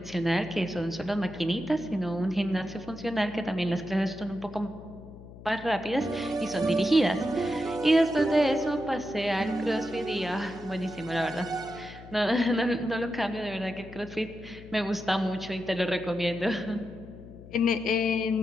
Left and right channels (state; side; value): noise; left; hum, 16 dB below the sound